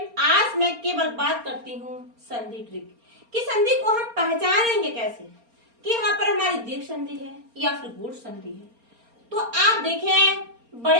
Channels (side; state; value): left; late; 4.3 ms